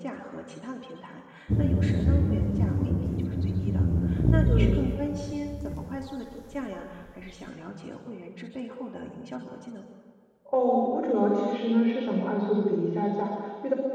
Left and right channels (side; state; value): both; identical; correlation 1.00